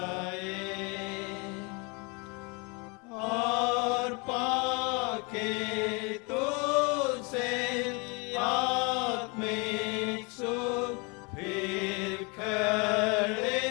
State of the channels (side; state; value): right; quieter; 30.7 dB